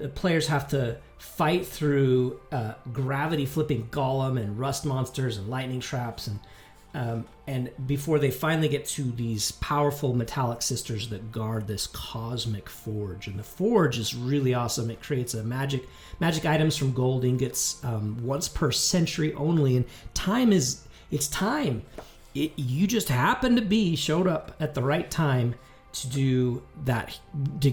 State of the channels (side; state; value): both; identical; correlation 1.00